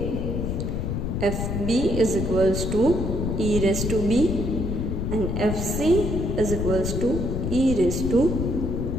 fb is equals to e raised to b, and fc is equals to e raised to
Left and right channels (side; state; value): left; noise; rumble, 2 dB below the sound